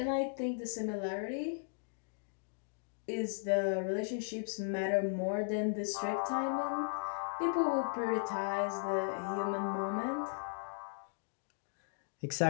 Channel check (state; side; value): silent; right; digital silence